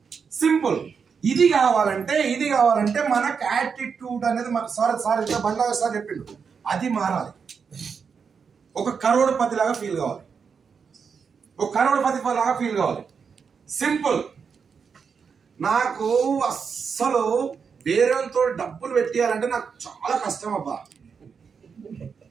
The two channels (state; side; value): quieter; left; 6.1 dB